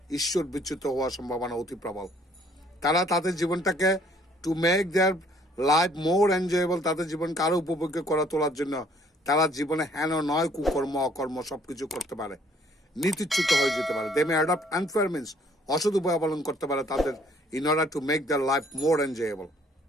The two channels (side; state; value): both; normal; correlation 0.61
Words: ঈশ্বর বিচ্যুত হওয়ার সম্ভাবনা অতি প্রবল। তারা তাদের জীবনটাকে to make their life more enjoyable, তাদের জীবনকে আরো উপভোগ্য করে তোলার জন্য তারা জীবনে হেন নয় কুকর্ম অকর্ম সবকিছু করতে পারে, নীতিচ্যুত হয়ে যেতে পারে। দে মে অ্যাডপ্ট আনফেয়ার মিনস, অসৎ উপায় অবলম্বন করতে পারে তাদের in order to make their life more enjoyable.